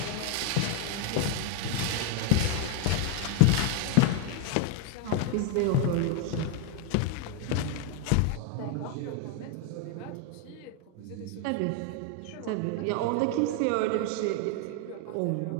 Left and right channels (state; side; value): different; both; correlation 0.01